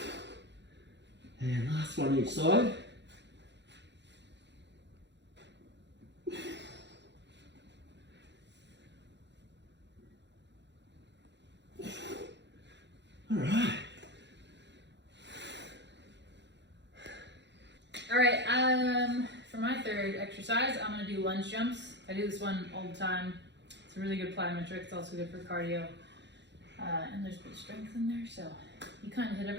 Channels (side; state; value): left; late; 0.51 ms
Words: And last one each side. Alright, for my third exercise, I'm going to do lunge jumps. I do this one all the time. It's a really good plyometric. It's also good for cardio. And there's good strength in there, so you kind of hit